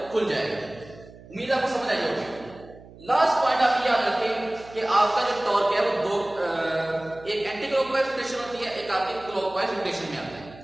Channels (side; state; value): right; noise; hum, 20 dB below the sound